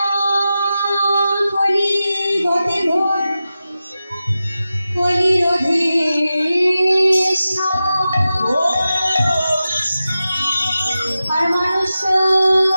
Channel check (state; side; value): inverted; both; correlation -0.93